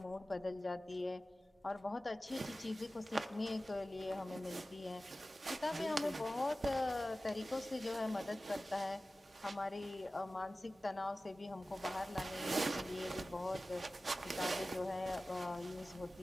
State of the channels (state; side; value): normal; both; correlation 0.96